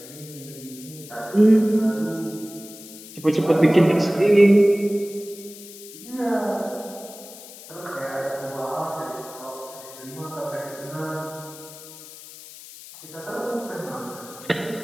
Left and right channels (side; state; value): left; noise; hiss, 16 dB below the sound